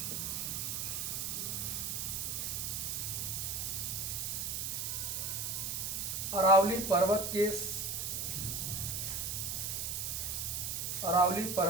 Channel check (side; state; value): right; noise; hiss, 1 dB below the sound